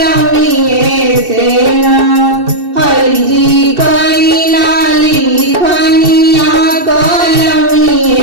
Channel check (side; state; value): left; late; 2.7 ms